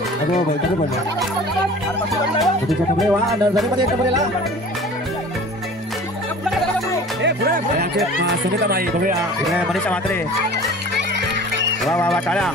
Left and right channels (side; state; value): both; normal; correlation 0.43